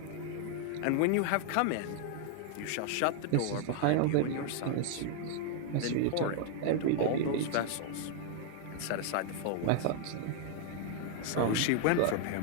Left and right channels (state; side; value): different; both; correlation 0.00